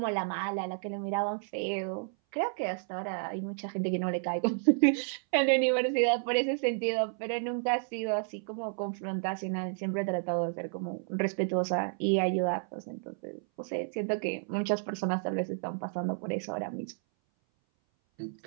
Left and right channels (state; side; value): silent; left; 57 dB below the other